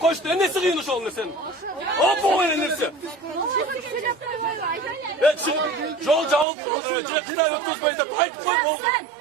koştu. Nesi kıyın şu an sen? Hop o neyse. Evet çıkıp yol cavuk kaldı. Cekta ötküzmeyip de ayıp koy oldu.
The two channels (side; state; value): left; drops out; at 6.5 s